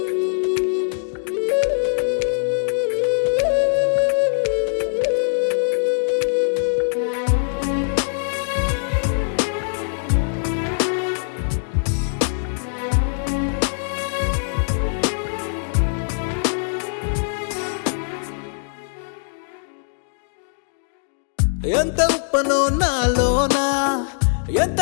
ఎంత ఉప్పనో నాలోనా, ఎంత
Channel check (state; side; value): silent; right; digital silence